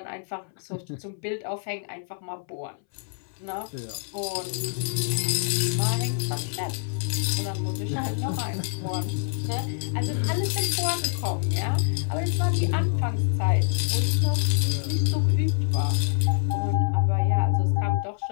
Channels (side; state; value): right; silent; 61 dB below the other